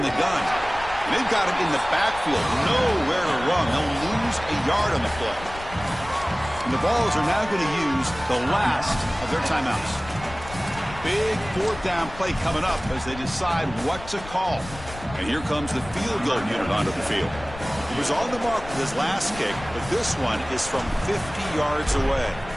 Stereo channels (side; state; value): left; noise; rumble, 15 dB below the sound